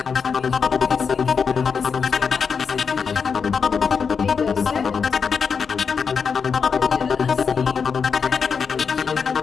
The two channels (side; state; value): right; quieter; 5.9 dB